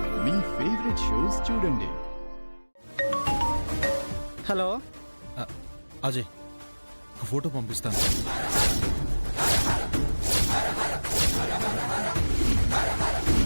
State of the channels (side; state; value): both; inverted; correlation -1.00